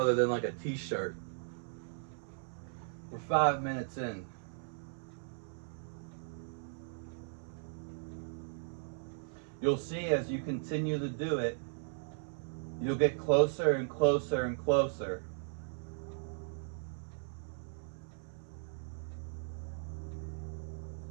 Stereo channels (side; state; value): left; silent; 53 dB below the other